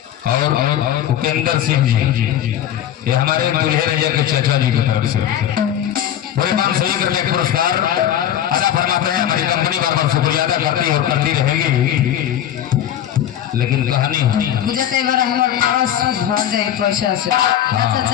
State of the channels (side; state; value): right; quieter; 10.8 dB